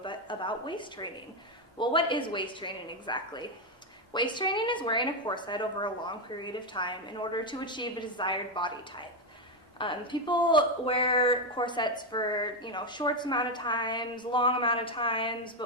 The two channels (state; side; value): normal; both; correlation 0.06